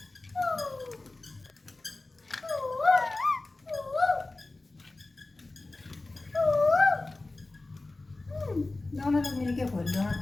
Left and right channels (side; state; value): right; quieter; 3.1 dB